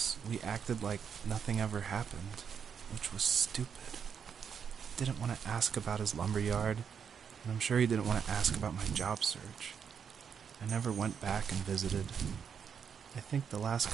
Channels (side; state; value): left; quieter; 7.2 dB